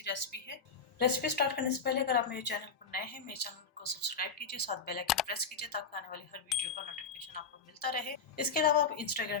रेसिपी है। रेसिपी स्टार्ट करने से पहले अगर आप मेरे चैनल पर नए हैं, मेरे चैनल को सब्सक्राइब कीजिए, साथ बेल आइकन प्रेस कीजिए ताकि आने वाली हर वीडियो का नोटिफिकेशन आपको मिलता रहे। इसके अलावा आप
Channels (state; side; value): quieter; right; 5.0 dB